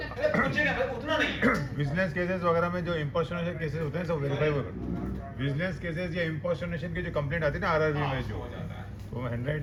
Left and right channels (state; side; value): identical; both; correlation 1.00